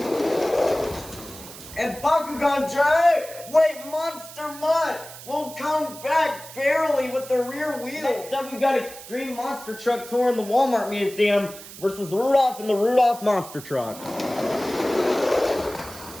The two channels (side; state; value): right; noise; hiss, 15 dB below the sound